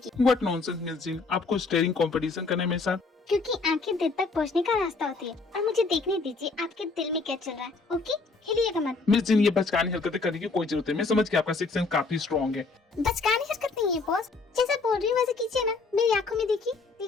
What nonsense, Miss Jean? आपको स्टेरिंग कंपटीशन करना है मेरे साथ? क्योंकि आंखें दिल तक पहुंचने का रास्ता होती है और मुझे देखने दीजिए आपके दिल में क्या चल रहा है, ओके? हिलिएगा मत। मिस जिन, ये बचकानी हरकतें करने की कोई जरूरत है। मैं समझ गया आपका सिक्स सेंस काफी स्ट्रॉन्ग है। बचकानी हरकत नहीं है बॉस, जैसा बोल रही हूँ वैसे कीजिए ना। मेरी आंखों में देखिए,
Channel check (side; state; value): right; quieter; 4.0 dB